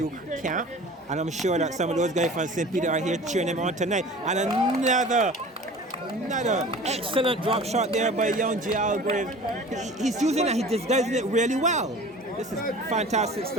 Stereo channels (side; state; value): both; normal; correlation 0.41